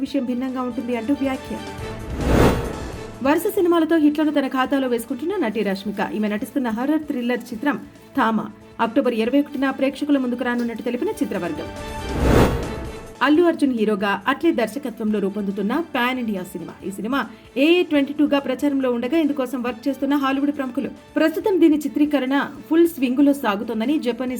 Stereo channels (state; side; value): identical; both; correlation 1.00